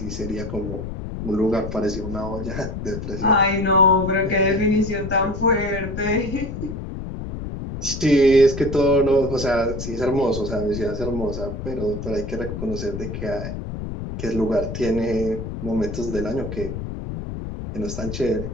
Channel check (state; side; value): noise; left; rumble, 7 dB below the sound